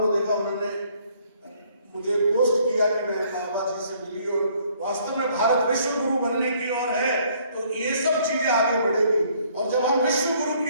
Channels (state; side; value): inverted; both; correlation -0.63